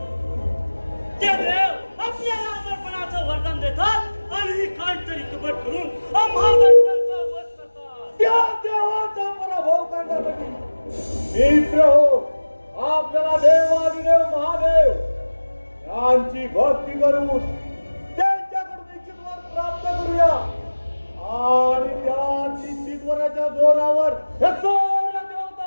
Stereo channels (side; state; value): both; inverted; correlation -1.00